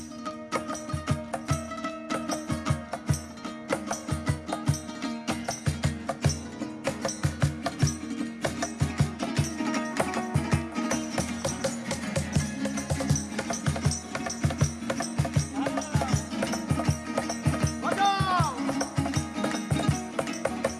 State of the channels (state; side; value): identical; both; correlation 1.00